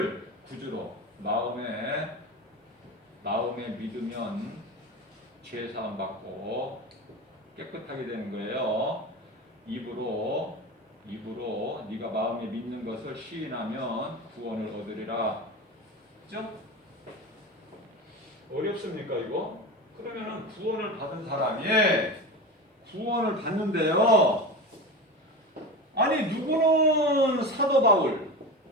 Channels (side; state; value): both; normal; correlation 0.26